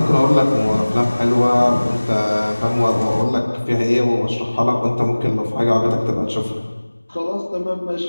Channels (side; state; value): both; inverted; correlation -1.00